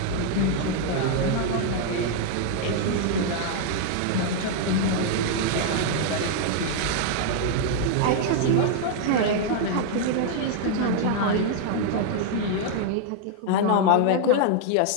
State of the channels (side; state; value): both; different; correlation 0.00